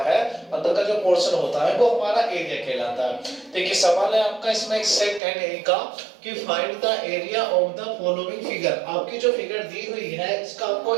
है, अंदर का जो पोर्शन होता है वो हमारा एरिया कहलाता है। देखिए सवाल है आपका इसमें सेकंड ए का कि find the area of the following figure. आपकी जो फिगर दी हुई है इसका आपको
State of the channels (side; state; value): left; drops out; at 5.2 s